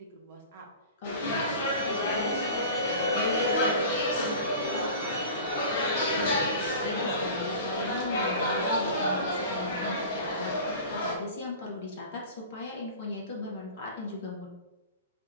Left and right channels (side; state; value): both; inverted; correlation -0.37